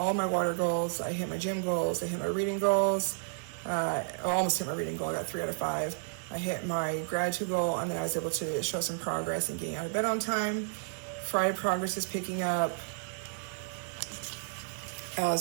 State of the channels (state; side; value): silent; left; digital silence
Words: my water goals, I hit my gym goals, I hit my reading goals. I almost hit my reading goal, I got 3 out of 5. I hit my gratitude goal, and then I was able to show some progress in getting out of bed on time. Friday progress is picking up,